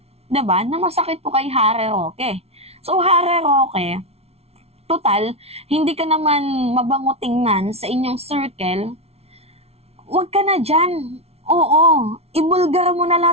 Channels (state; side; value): late; left; 0.30 ms